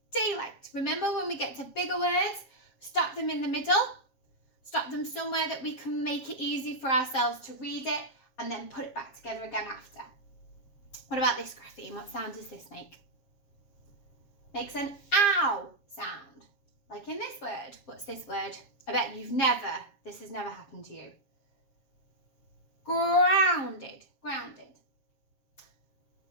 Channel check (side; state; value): right; late; 7.4 ms